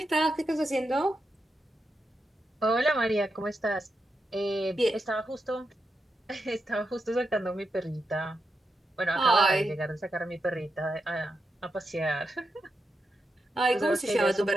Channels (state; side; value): normal; both; correlation 0.86